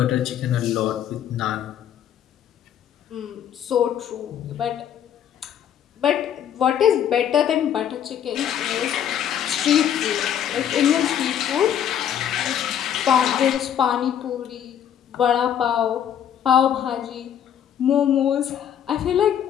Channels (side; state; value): right; quieter; 9.6 dB